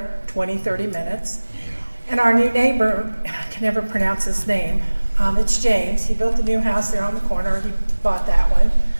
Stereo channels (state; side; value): inverted; both; correlation -1.00